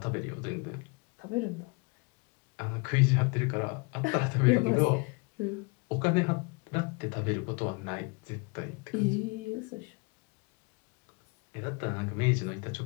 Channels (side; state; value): right; quieter; 30.4 dB